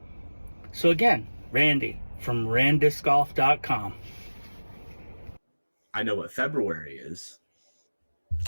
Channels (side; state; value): both; inverted; correlation -1.00